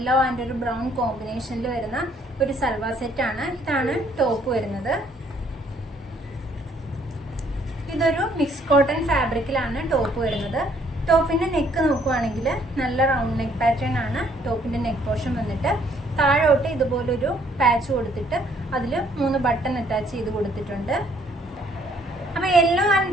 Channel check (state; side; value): normal; both; correlation 0.64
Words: ആൻഡ് ഒരു ബ്രൗൺ കോമ്പിനേഷനിൽ വരുന്ന ഒരു സൽവാർ സെറ്റാണ്. ഇതാണ് ടോപ്പ് വരുന്നത്. ഇതൊരു മിക്സ് കോട്ടൺ ഫാബ്രിക്കിലാണ് ടോപ്പ് വരുന്നത്. ടോപ്പിന്റെ നെക്ക് നോക്കുവാണെങ്കിൽ നല്ല റൗണ്ട് നെക്ക് പാറ്റേൺ ആണ് ടോപ്പിന്റെ നെക്ക് പോർഷൻ വന്നിട്ട്. താഴോട്ട് ഇതുപോലൊരു പാച്ച് കൊടുത്തിട്ട് അതിൽ 3 ബട്ടൺ അറ്റാച്ച് ചെയ്ത് കൊടുത്തിട്ടുണ്ട്. അപ്പോൾ യെല്ലോ ആൻഡ്